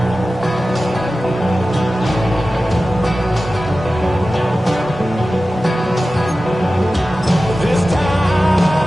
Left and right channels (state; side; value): normal; both; correlation 0.95